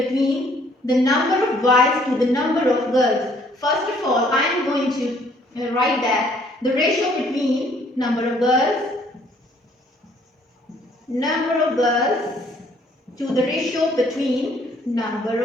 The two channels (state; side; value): normal; both; correlation 0.62